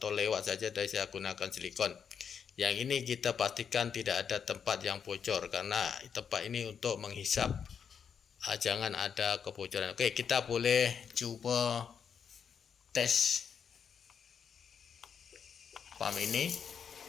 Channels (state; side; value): quieter; right; 7.2 dB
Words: lewat saja, dari saya gunakan silikon. Yang ini kita pastikan tidak ada tempat yang bocor, karena tempat ini untuk menghisap, jangan ada kebocoran. Oke, kita boleh coba tes pump ini,